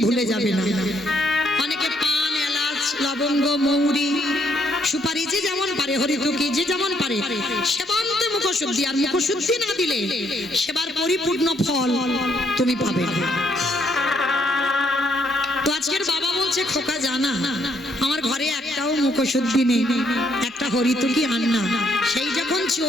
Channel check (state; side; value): normal; both; correlation 0.71